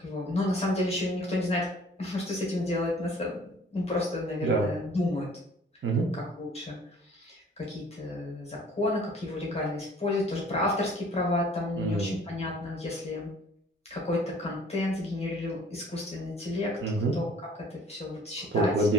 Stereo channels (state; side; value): normal; both; correlation 0.53